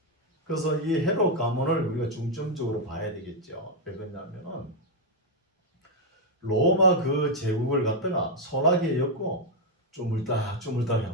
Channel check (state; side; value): normal; both; correlation 0.01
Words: 그래서 이 헤롯 가문을 우리가 중점적으로 봐야 되겠죠. 왜 그러냐면은 로마 그 제국을 갖다가 소나기에 엮고 쪼물딱